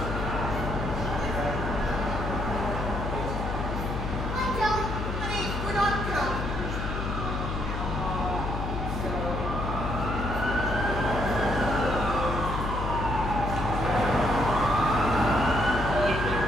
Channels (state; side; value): noise; left; hum, 3 dB below the sound